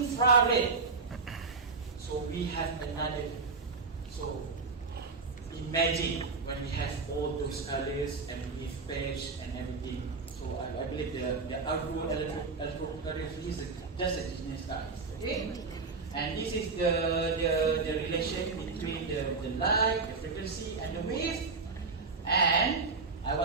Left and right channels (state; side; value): quieter; left; 4.3 dB